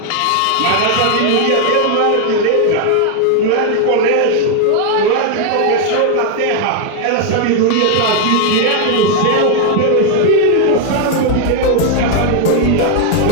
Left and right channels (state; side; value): different; both; correlation 0.00